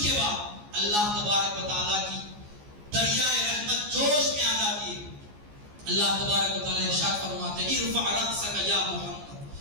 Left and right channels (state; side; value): late; left; 14 ms